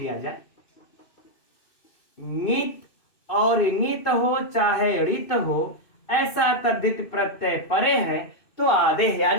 जाए। नीत और नीत हो चाहे ऋत हो, ऐसा तद्धित प्रत्यय परे है तो आदेह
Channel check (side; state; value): right; late; 2.6 ms